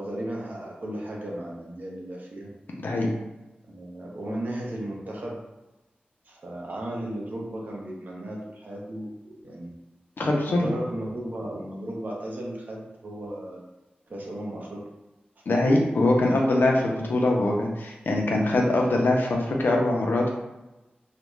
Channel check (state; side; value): normal; both; correlation 0.90